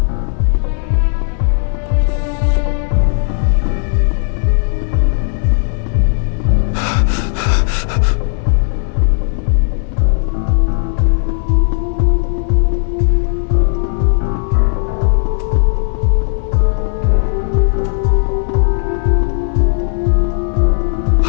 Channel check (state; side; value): silent; right; digital silence